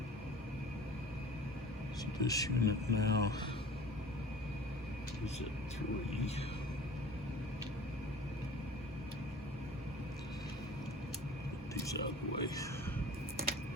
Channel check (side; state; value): both; normal; correlation 0.43